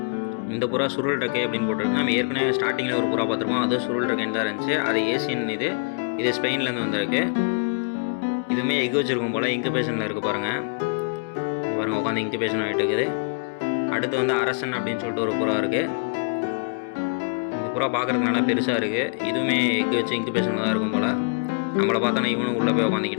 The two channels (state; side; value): quieter; right; 39.6 dB